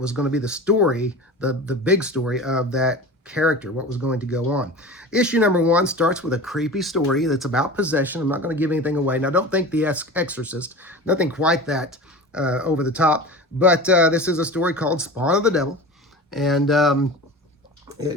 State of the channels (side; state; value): both; normal; correlation 0.34